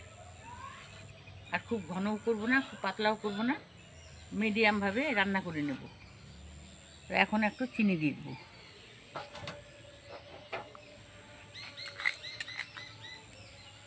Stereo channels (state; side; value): identical; both; correlation 1.00